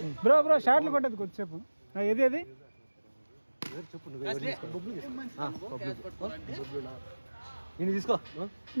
బ్రో షాట్లు కొట్టదు కొద్దిసేపు. ఏది చెప్పు. నేను తీసుకో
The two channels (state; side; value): inverted; both; correlation -1.00